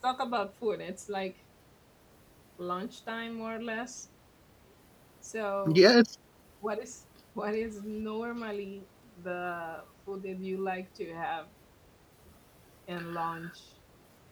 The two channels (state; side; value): identical; both; correlation 1.00